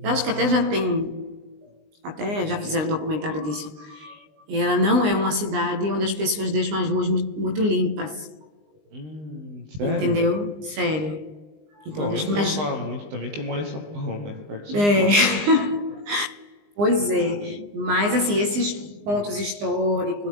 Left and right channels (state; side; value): late; left; 20 ms